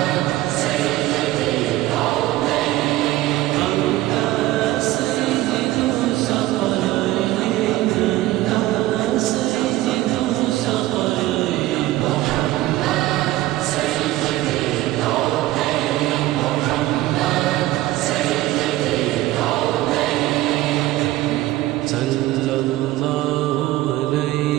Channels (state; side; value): quieter; left; 16.4 dB